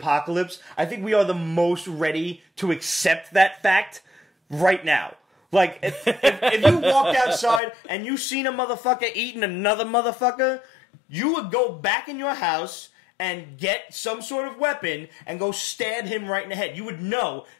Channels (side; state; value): right; drops out; at 7.6 s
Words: I think we are the most ready to accept that fact right now. Like, if you walked outside and you seen a motherfucker eating another motherfucker, you would go back in your house and get some sort of weapon and go stab him right in the head. You would know